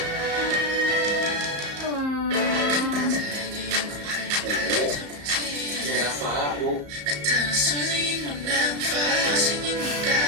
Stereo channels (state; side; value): late; left; 34 ms